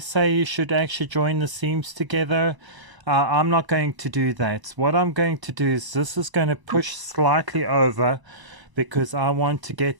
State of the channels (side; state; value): left; late; 1.0 ms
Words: you should actually join the seams together. I'm not going to do that. What I'm going to do is this is going to push slightly over because I want to